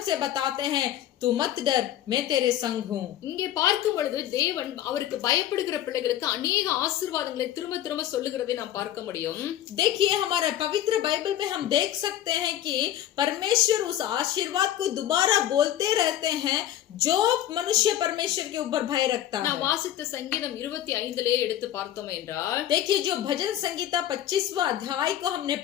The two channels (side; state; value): right; quieter; 12.1 dB